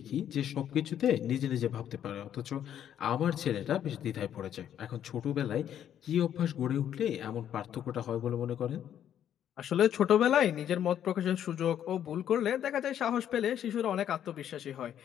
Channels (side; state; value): right; quieter; 10.1 dB